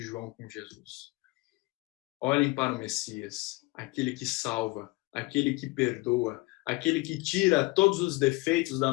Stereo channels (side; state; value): right; quieter; 23.3 dB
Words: João com Jesus? Olhem para o Messias, aquele que salva, aquele que perdoa, aquele que tira todos os defeitos da